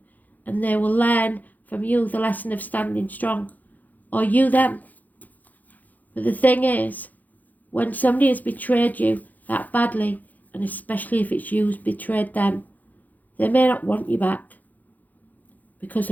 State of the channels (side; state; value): right; late; 0.081 ms